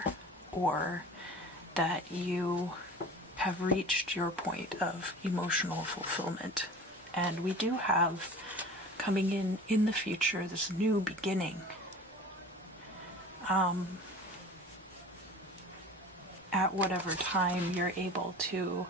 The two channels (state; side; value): normal; both; correlation 0.39